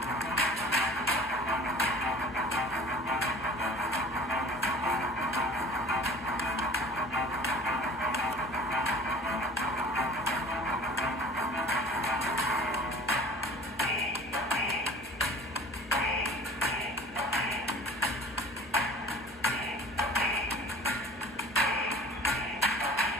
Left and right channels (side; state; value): both; normal; correlation 0.45